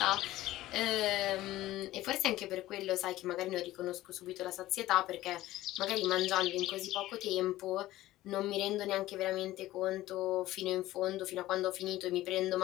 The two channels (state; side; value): quieter; right; 15.9 dB